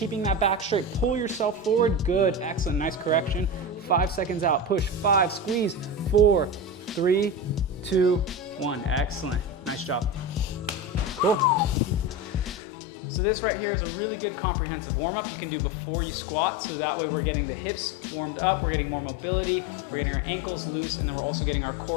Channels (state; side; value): drops out; right; at 12.6 s